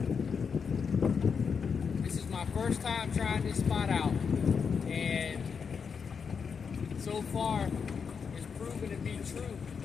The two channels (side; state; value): right; quieter; 6.1 dB